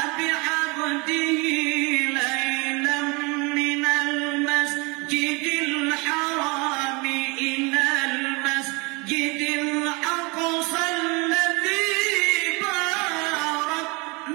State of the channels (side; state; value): left; quieter; 28.0 dB